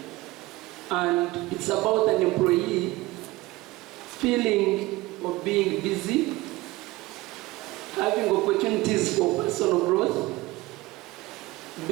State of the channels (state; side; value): quieter; left; 20.0 dB